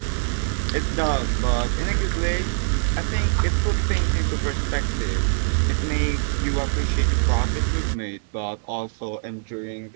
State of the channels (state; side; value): silent; left; digital silence